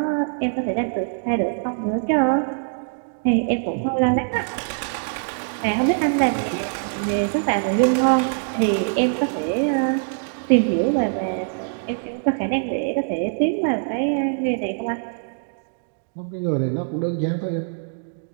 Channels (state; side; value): silent; left; digital silence